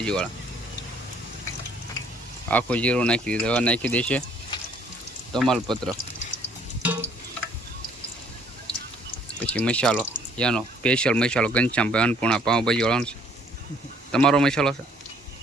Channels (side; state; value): both; normal; correlation 0.61